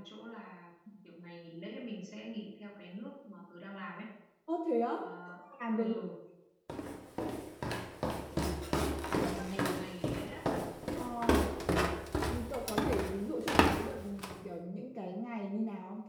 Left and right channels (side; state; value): both; identical; correlation 1.00